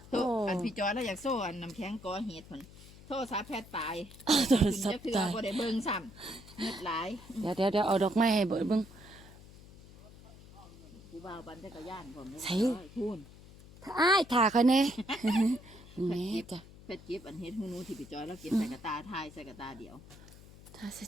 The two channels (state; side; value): noise; left; hum, 19 dB below the sound